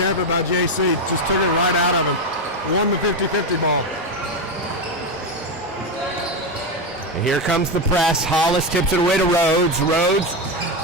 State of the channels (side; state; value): both; normal; correlation 0.11